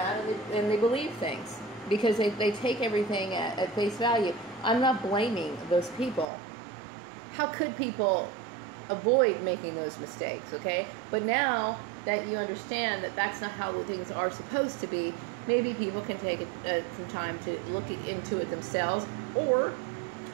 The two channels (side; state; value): left; drops out; at 6.2 s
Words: and they believe things because they take everything at face value. I'm not blaming those people. How could people avoid making those mistakes, okay? But now that you understand that that's not how things are supposed to be, maybe people can take some time to look into it themselves, or